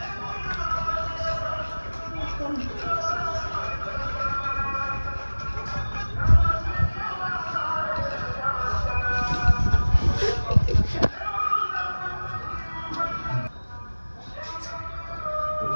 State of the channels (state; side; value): inverted; both; correlation -1.00